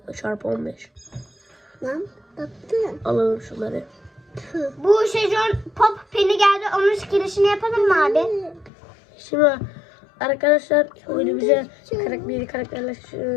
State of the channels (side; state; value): right; drops out; at 8.7 s